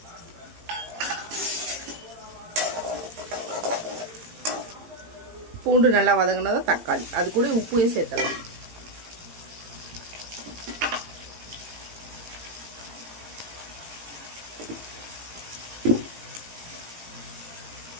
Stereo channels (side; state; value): left; late; 18 ms